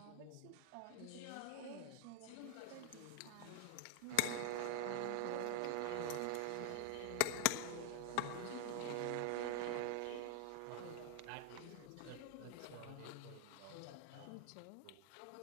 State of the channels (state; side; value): different; both; correlation 0.00